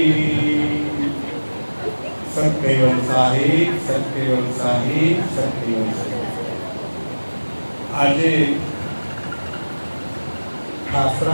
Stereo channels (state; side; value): inverted; both; correlation -1.00